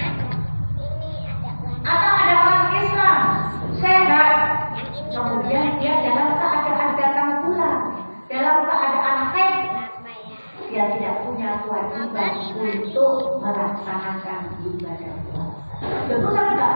Atau ada orang Islam sehat, kemudian dia dalam keadaan datang bulan, dalam keadaan haid, dia tidak punya kewajiban untuk melaksanakan ibadah puasa. Tentu saya tidak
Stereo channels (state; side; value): inverted; both; correlation -1.00